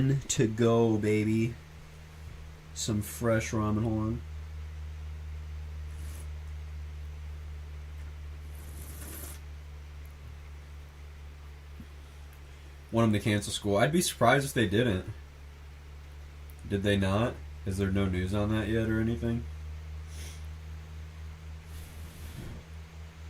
to go, baby. Some fresh ramen. Hold on. Want them to cancel school. I'd be surprised if they didn't. Did they not? Is there no news on that yet or anything?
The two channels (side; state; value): both; identical; correlation 1.00